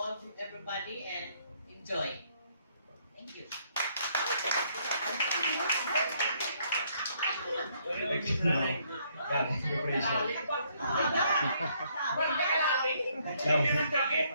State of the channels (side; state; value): both; inverted; correlation -0.69